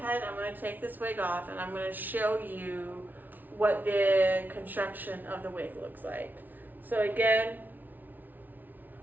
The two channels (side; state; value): left; late; 0.084 ms